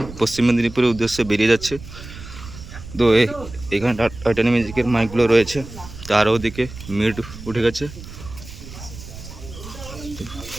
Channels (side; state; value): right; noise; rumble, 14 dB below the sound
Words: পশ্চিম মেদিনীপুরের উদ্দেশ্যে বেরিয়ে যাচ্ছে। তো এখানে টাইটানিক মিউজিকের মাইকগুলো রয়েছে, তার ওদিকে মিড উঠে গেছে।